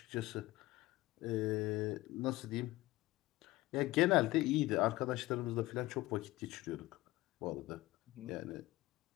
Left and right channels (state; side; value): quieter; right; 18.6 dB